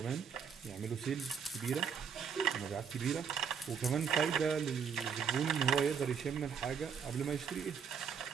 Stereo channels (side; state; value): left; quieter; 6.7 dB